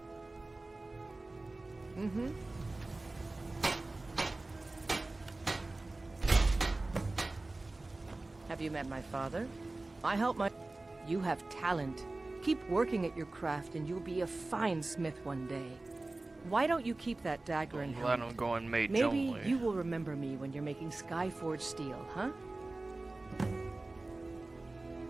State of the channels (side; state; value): left; quieter; 3.1 dB